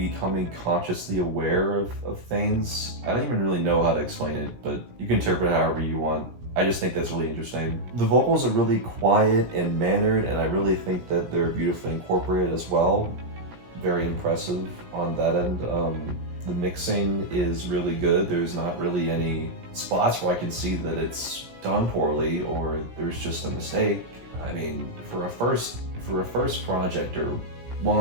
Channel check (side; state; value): left; late; 17 ms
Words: consciously aware of things. I don't even really know how to explain it, but you can interpret it however you want. I just think that's really interesting. The vocals are really quiet and mannered, and I really think that they're beautifully incorporated as well. Very impressive on that end. The mixing is really good. There's not really any spots where I can see that it's done poorly or there's just a mistake. I mean, for a first project, or